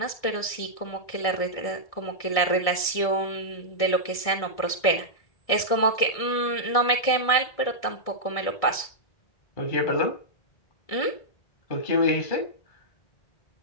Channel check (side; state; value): right; late; 1.6 ms